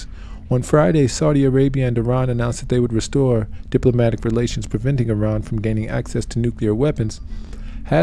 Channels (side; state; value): both; identical; correlation 1.00